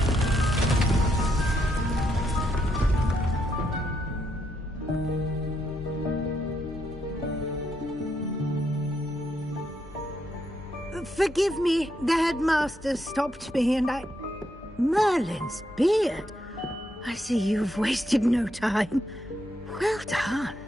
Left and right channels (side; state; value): both; normal; correlation 0.79